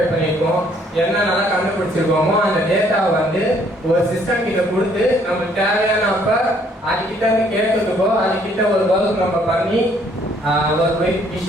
பண்ணியிருக்கோம், என்னென்னலாம் கண்டுபிடிச்சிருக்கோமோ அந்த டேட்டாவை வந்து ஒரு சிஸ்டம் கிட்ட கொடுத்து நமக்கு தேவையானப்ப அதுக்கிட்ட இருந்து கேட்கறதுக்கோ அதுக்கிட்ட ஒரு ஒர்க் நம்ம பண்ணி ஒரு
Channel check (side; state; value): both; normal; correlation 0.64